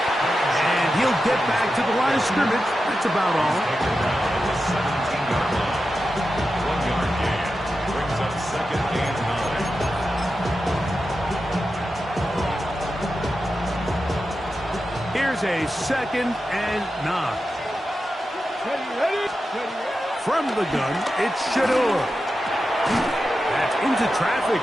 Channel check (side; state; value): both; normal; correlation 0.91